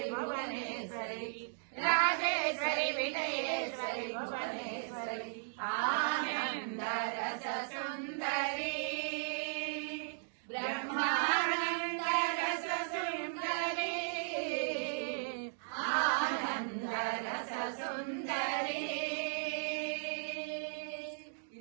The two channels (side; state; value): left; silent; digital silence